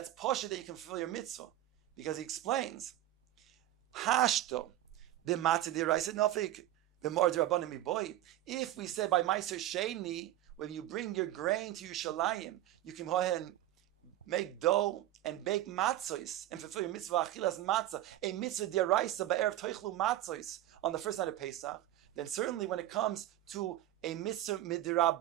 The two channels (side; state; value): left; quieter; 13.7 dB